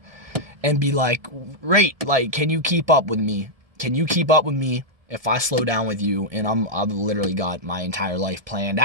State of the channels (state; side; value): late; left; 1.7 ms